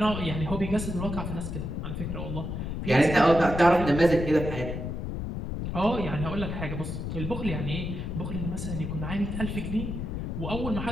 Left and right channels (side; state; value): left; noise; rumble, 4 dB below the sound